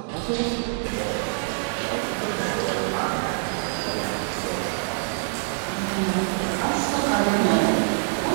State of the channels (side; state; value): left; silent; digital silence